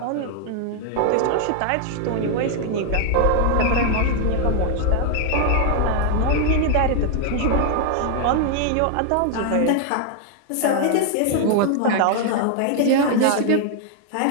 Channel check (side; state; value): both; different; correlation 0.00